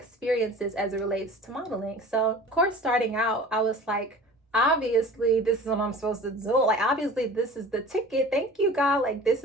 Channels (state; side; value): normal; both; correlation 0.41